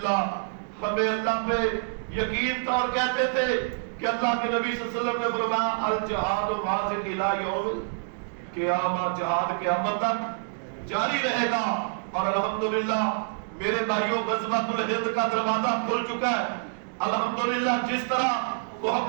ہمیں اللہ پہ یقین تھا اور کہتے تھے کہ اللہ کے نبی صلی اللہ علیہ وسلم نے فرمایا الجہاد واصل الی یوم قیامت، جہاد قیامت تک جاری رہے گا۔ اور الحمدللہ میرے بھائیوں، غزوۃ الہند کا دروازہ کھل چکا ہے۔ الحمدللہ جس طرح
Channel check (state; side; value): silent; left; digital silence